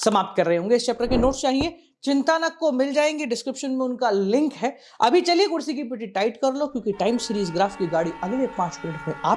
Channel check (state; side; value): identical; both; correlation 1.00